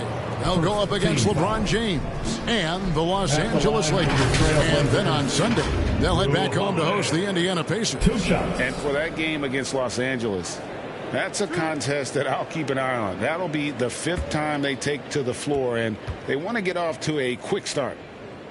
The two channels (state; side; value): identical; both; correlation 1.00